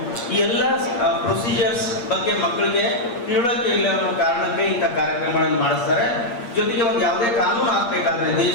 ಈ ಎಲ್ಲ ಪ್ರೊಸೀಜರ್ಸ್ ಬಗ್ಗೆ ಮಕ್ಕಳಿಗೆ ತಿಳುವಳಿಕೆ ಇಲ್ಲ ಅನ್ನೋ ಕಾರಣಕ್ಕೆ ಇಂಥ ಕಾರ್ಯಕ್ರಮಗಳನ್ನು ಮಾಡಿಸ್ತಾರೆ. ಜೊತೆಗೆ ಒಂದು ಯಾವುದೇ ಕಾನೂನು ಆಗ್ಬೇಕಾದ್ರೆ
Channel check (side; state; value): right; late; 8.4 ms